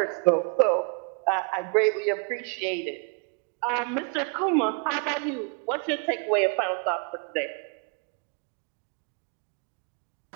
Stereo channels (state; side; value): quieter; left; 37.8 dB